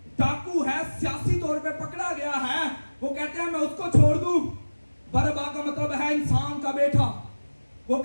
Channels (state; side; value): inverted; both; correlation -1.00